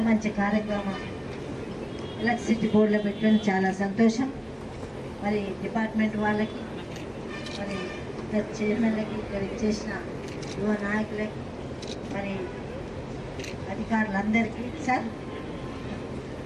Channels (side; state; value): both; identical; correlation 1.00